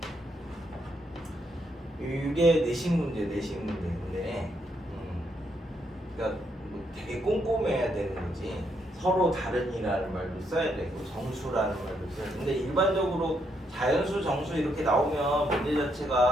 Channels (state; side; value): normal; both; correlation 0.76